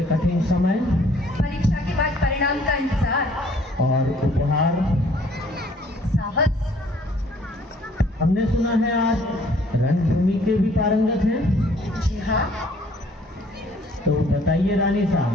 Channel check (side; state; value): both; normal; correlation 0.59